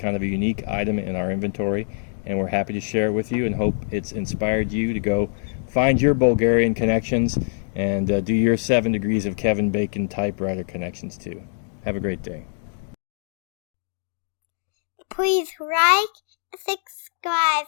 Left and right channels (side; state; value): right; silent; digital silence